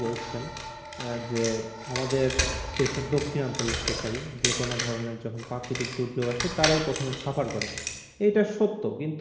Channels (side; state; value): both; identical; correlation 1.00